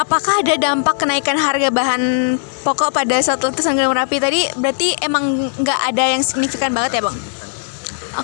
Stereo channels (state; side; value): silent; right; 65 dB below the other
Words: ada dampak kenaikan harga bahan pokok pada saat letusan Gunung Merapi tadi? Berarti emang nggak ada yang signifikan banget ya Bang?